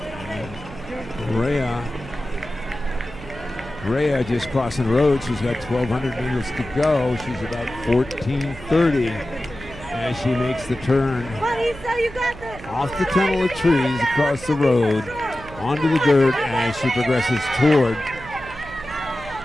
Rea just crossing the road. She's got 1,200 meters to go. She's about 14:30 as she makes the turn off the tunnel of trees across the road onto the dirt as she progresses toward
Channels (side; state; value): right; noise; hum, 16 dB below the sound